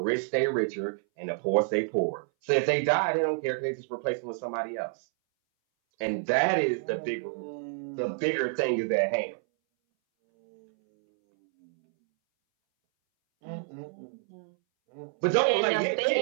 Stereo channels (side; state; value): left; silent; 59 dB below the other